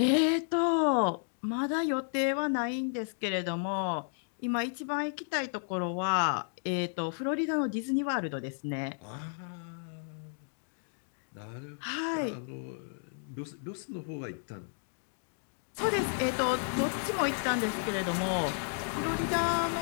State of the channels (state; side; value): silent; right; digital silence